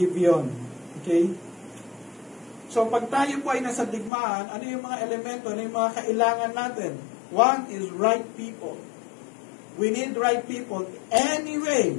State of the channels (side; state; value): right; drops out; at 4.1 s